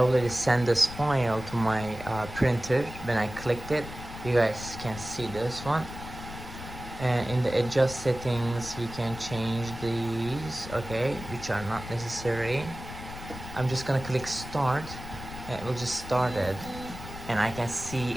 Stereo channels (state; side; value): noise; left; rumble, 11 dB below the sound